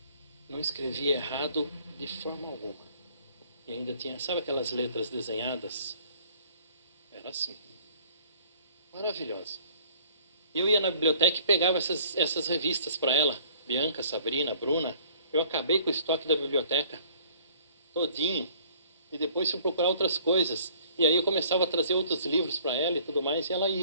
Não escrevia errado de forma alguma. E ainda tinha, sabe aquelas letras desenhadas? Era assim. Maravilhosa. Eu ia na biblioteca e pegava essas revistas para ela. Bianca, Sabrina, Bruna. Eu acabei com o estoque da biblioteca. Todinho. E depois fui procurar outras coisas. E aí eu começava a trazer outros livros para ela e tudo mais. E ela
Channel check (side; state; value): both; inverted; correlation -0.55